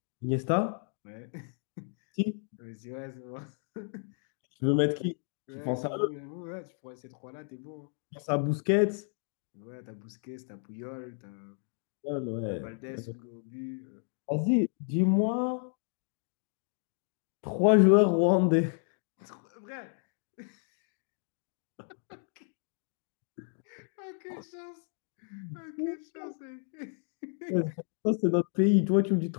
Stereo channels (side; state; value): right; silent; 56 dB below the other